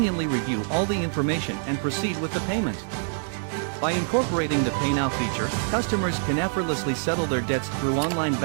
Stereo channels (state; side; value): silent; left; digital silence